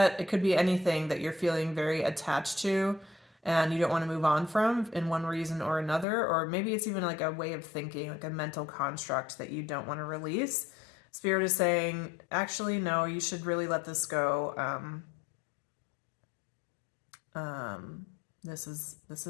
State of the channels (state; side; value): drops out; right; at 6.1 s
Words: it could be anything that you're feeling very attached to and you don't want to move on from in one reason or another, or maybe it's even like a way of thinking, like a mental construct that you don't want to release. Spirit is saying, actually, no, you should really let this go. This